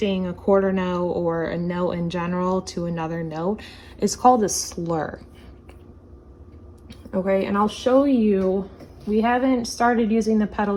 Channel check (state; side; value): identical; both; correlation 1.00